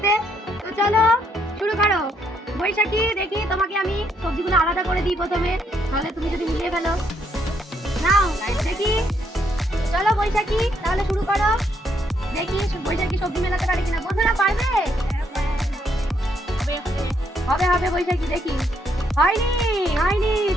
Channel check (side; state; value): both; normal; correlation 0.73